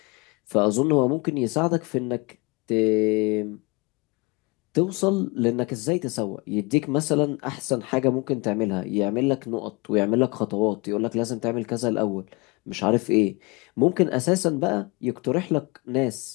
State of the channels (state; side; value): quieter; right; 26.8 dB